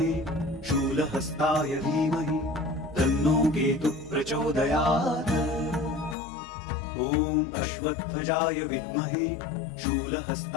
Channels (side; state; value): right; drops out; at 6.2 s